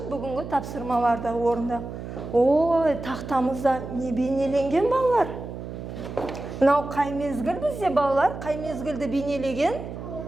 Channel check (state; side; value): noise; right; hum, 9 dB below the sound